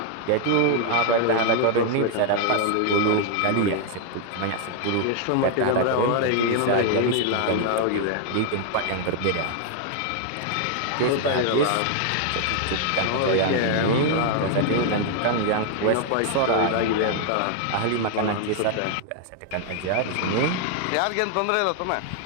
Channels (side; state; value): both; different; correlation 0.00